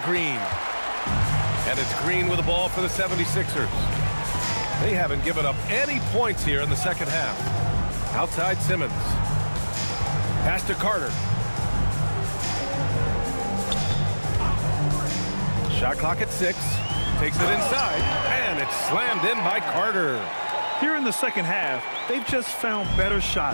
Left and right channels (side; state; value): both; inverted; correlation -1.00